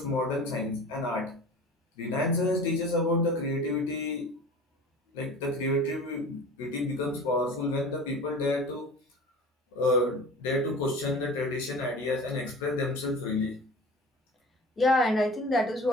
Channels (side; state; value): both; normal; correlation 0.38